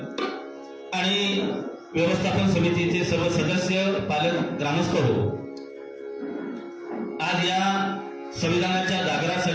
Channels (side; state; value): both; identical; correlation 1.00